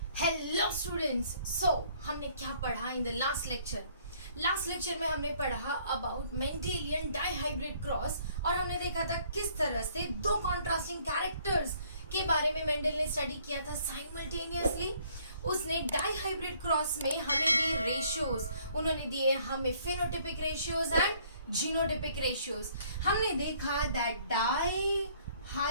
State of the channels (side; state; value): both; inverted; correlation -0.61